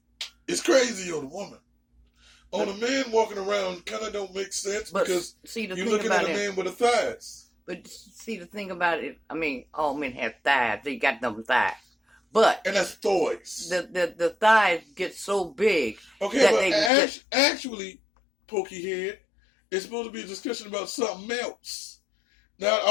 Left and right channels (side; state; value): right; drops out; at 16.9 s